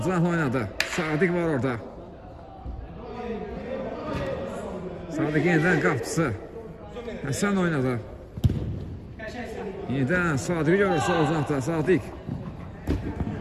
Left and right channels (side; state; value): both; identical; correlation 1.00